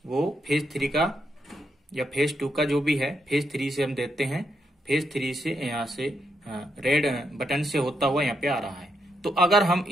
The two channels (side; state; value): both; normal; correlation 0.79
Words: वो फेज 3 का या फेज 2 का जो भी है, फेज 3 से हम देते हैं। फेज 3 से यहां से रेड बटन से होता हुआ यहाँ पे आ रहा है। तो अगर हम